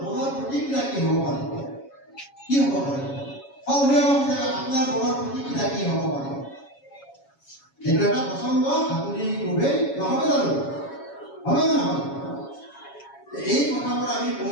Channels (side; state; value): right; late; 7.2 ms